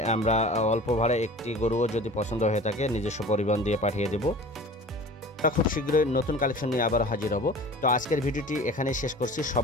আমরা অল্প ভাড়ায় একটি গরুও যদি পছন্দ হয়ে থাকে নিজস্ব পরিবহন দিয়ে পাঠিয়ে দেব। খুব শীঘ্রই নতুন কালেকশন নিয়ে আবার হাজির হব। তো আজকের ভিডিওটি এখানেই শেষ করছি।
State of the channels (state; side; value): normal; both; correlation 0.41